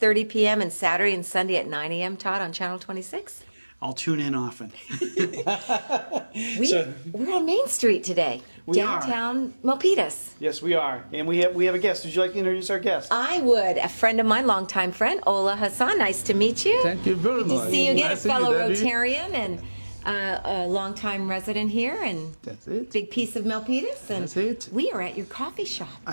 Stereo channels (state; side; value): inverted; both; correlation -1.00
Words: p.m. and Saturday and Sunday at 9 a.m., Todd, on Channel 26? I'll tune in often. We're on Main Street today, downtown Milpitas. Yes, we are. And we have a guest. Would you like to introduce our guest? I would. A friend of mine, longtime friend, Ola Hassan. Nice to meet you. Thank you very much. Good to see you again, Nice a fellow to meet you, Rotarian and a longtime resident here, and That's it. big piece of Milpitas. And That's it. we are at your coffee shop.